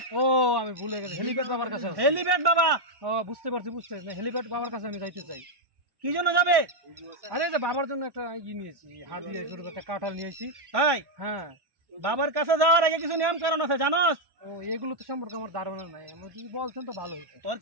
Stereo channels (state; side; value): late; left; 1.1 ms